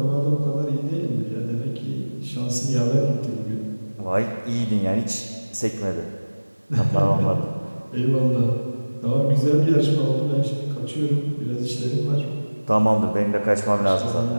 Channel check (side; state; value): both; inverted; correlation -1.00